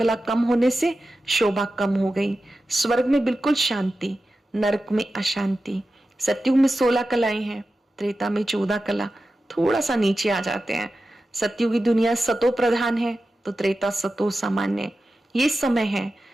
कम होने से शोभा कम हो गई। स्वर्ग में बिल्कुल शांति, नरक में अशांति। सतयुग में 16 कलाएं हैं, त्रेता में 14 कला, थोड़ा सा नीचे आ जाते हैं। सतयुगी दुनिया सतो प्रधान है तो त्रेता सतो सामान्य। ये समय है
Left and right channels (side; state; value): both; normal; correlation 0.93